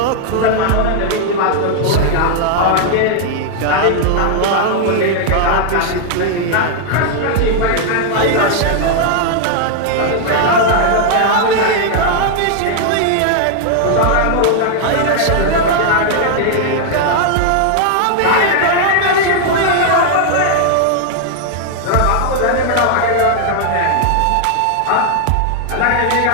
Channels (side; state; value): both; different; correlation 0.00